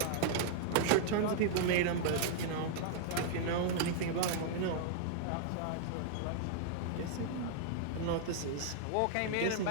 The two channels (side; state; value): both; different; correlation -0.01